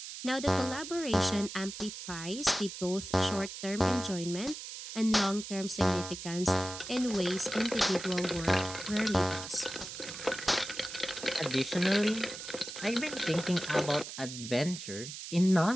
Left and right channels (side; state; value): right; noise; hiss, 10 dB below the sound